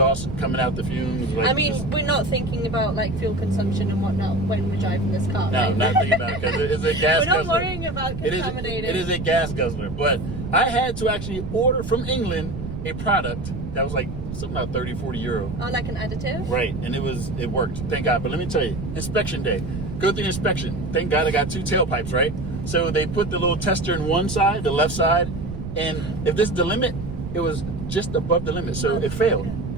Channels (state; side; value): noise; right; rumble, 8 dB below the sound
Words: coming out the fumes. Like, I mean, we're not thinking about like fuel consumption and whatnot when we're driving this car. No, right? not thinking about it because it's a gas We're not guzzler. worrying about contaminating. It is a gas guzzler. But I had to actually order from England a product that was like something about 30, 40 euro. Oh, like an additive? Right, and it worked. Thank God. But let me tell you, inspection day. Go through the inspection. Thank God I got 2 tailpipes, right? So they put the little tester in one side, the left side, and if this is the limit, it was just above the limit, so it failed.